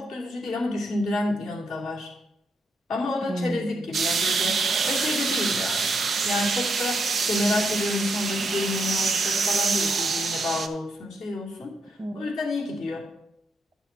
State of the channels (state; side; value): normal; both; correlation 0.79